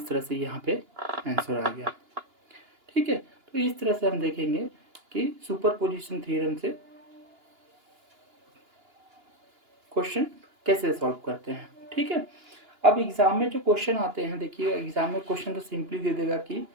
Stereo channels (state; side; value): late; left; 2.9 ms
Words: तरह से यहाँ पे आंसर आ गया, ठीक है। तो इस तरह से हम देखेंगे कि सुपरपोजिशन थ्योरम से क्वेश्चन कैसे सॉल्व करते हैं, ठीक है। अब एग्जाम में जो क्वेश्चन आते हैं, देखिए एग्जाम में क्वेश्चन तो सिंपली दे देगा कि